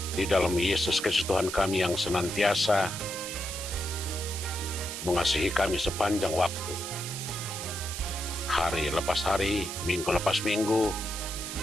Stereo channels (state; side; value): noise; right; hiss, 7 dB below the sound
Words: di dalam Yesus Kristus Tuhan kami yang senantiasa mengasihi kami sepanjang waktu, hari lepas hari, minggu lepas minggu,